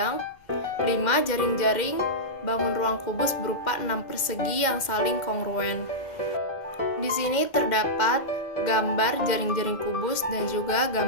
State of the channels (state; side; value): late; right; 2.1 ms